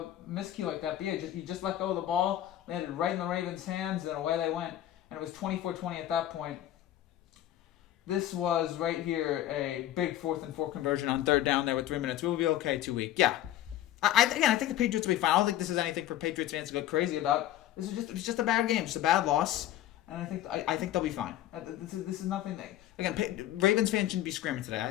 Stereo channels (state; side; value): quieter; right; 12.9 dB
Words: miscue like that. But yeah, he just let go of the ball, landed right in the Ravens' hands, and away they went. And it was 24-20 at that point. This was right here a big 4th and 4 conversion on 3rd down there with 3 minutes. We'll be okay 2 week. Yeah. I think the Patriots will be fine. I don't think this is anything for Patriots fans to go crazy about. It's just a bad game, just a bad loss, and I think they'll be fine. This is nothing. Ravens fans shouldn't be screaming today.